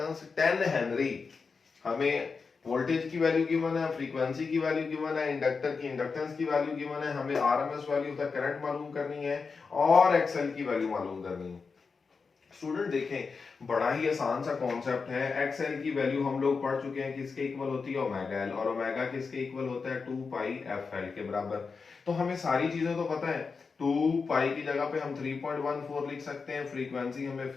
10 Henry। हमें वोल्टेज की वैल्यू गिवन है, फ्रीक्वेंसी की वैल्यू गिवन है, इंडक्टर की इंडक्टेंस की वैल्यू गिवन है, हमें RMS value of the current मालूम करनी है और एक्सएल की वैल्यू मालूम करनी है। स्टूडेंट देखें बड़ा ही आसान सा कॉन्सेप्ट है। एक्सएल की वैल्यू हम लोग पढ़ चुके हैं, किसके इक्वल होती है ओमेगा एल, और ओमेगा किसके इक्वल होता है 2 पाई एफ एल के बराबर। तो हमें सारी चीजें तो पता है। 2 पाई की जगह पे हम 3.14 लिख सकते हैं, फ्रीक्वेंसी हमें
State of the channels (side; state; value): right; quieter; 4.9 dB